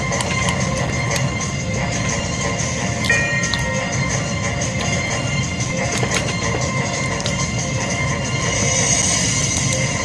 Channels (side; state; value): both; identical; correlation 1.00